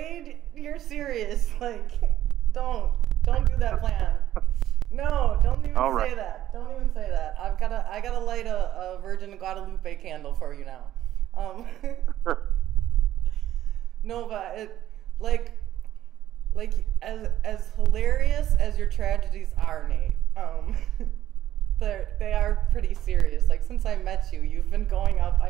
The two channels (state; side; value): quieter; left; 12.7 dB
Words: you're serious. Like, don't do that plan. No, don't even say that. Don't even say that. I gotta light a Virgin Guadalupe candle for you now. No, but it, like as hilarious as your tragedies are, Nate. They are pretty serious. Like, since I met you, you've been going up.